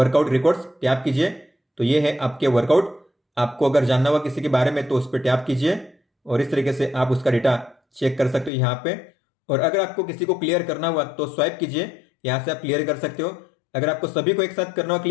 रिकॉर्ड्स, टैप कीजिए तो ये है आपके वर्कआउट। आपको अगर जानना हुआ किसी के बारे में तो उस पर टैप कीजिए और इस तरीके से आप उसका डेटा चेक कर सकते हो यहाँ पे। और अगर आपको किसी को क्लियर करना हुआ तो स्वाइप कीजिए, यहाँ से आप क्लियर कर सकते हो। अगर आपको सभी को एक साथ करना हो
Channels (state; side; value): drops out; right; at 8.5 s